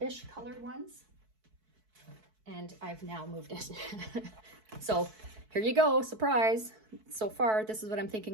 colored ones, and I've now moved it. So here you go, surprise. So far, this is what I'm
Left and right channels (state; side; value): late; left; 4.6 ms